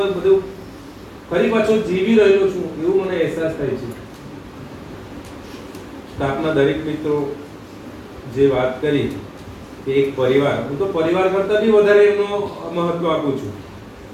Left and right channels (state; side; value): identical; both; correlation 1.00